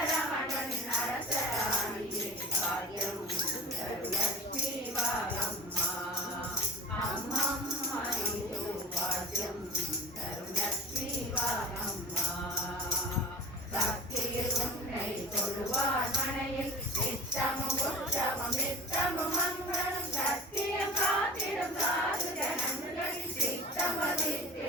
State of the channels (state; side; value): normal; both; correlation 0.37